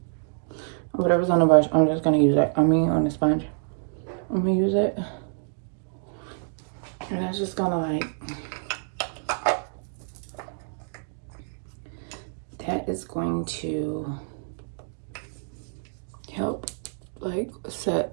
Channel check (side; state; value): left; silent; digital silence